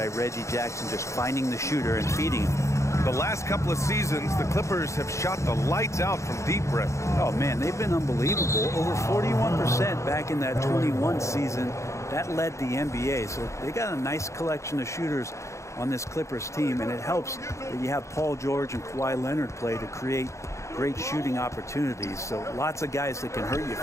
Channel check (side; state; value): right; late; 0.14 ms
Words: Reggie Jackson just finding the shooter and feeding him. The last couple of seasons, the Clippers have shot the lights out from deep rim. Oh, man, they've been unbelievable. Over 41% back in that 21 season. That led the NBA. So they got a nice collection of shooters on this Clippers team, and it helps that you have Paul George and Kawhi Leonard play to create great shooting opportunities. So lots of guys that can hurt you